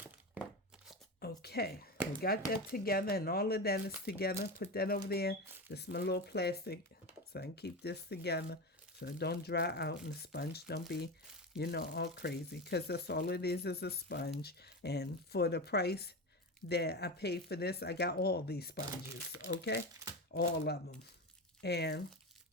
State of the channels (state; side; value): normal; both; correlation 0.22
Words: Okay, we got that together, and all of that is together. Put that over there. This is my little plastic, so I can keep this together so it don't dry out and the sponge don't be, all crazy. Because that's all it is a sponge. And for the price that I paid for this, I got all these sponges, okay? All of them. And